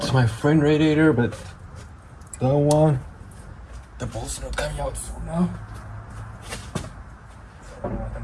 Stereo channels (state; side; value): identical; both; correlation 1.00